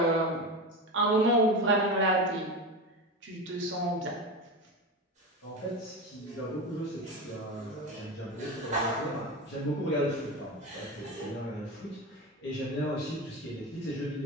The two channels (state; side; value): normal; both; correlation 0.23